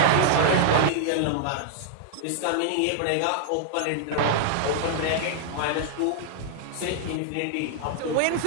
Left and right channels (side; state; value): both; different; correlation -0.01